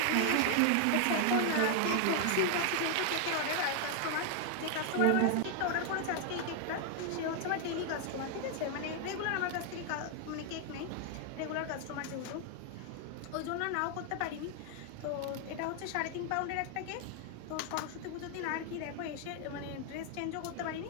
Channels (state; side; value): different; both; correlation 0.00